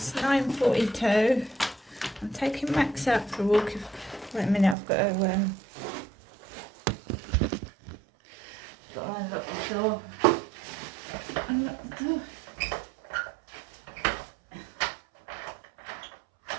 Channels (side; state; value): left; drops out; at 4.8 s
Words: 9:42. I'm taking Max out for a walk. Wait a minute, I've got to unlock the door. Unlock the door.